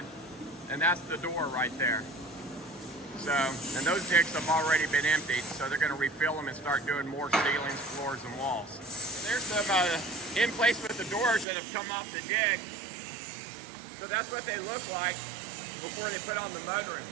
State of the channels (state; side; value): drops out; left; at 11.5 s